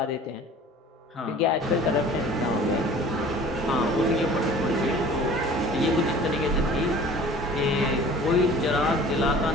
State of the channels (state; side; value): normal; both; correlation 0.46